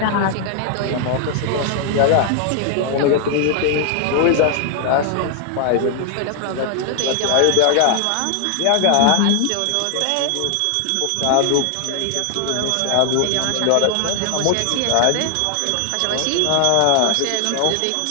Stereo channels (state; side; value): different; both; correlation 0.00